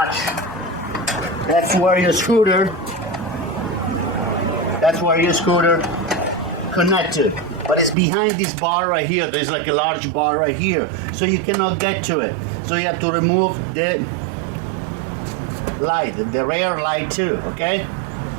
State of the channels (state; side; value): drops out; left; at 8.0 s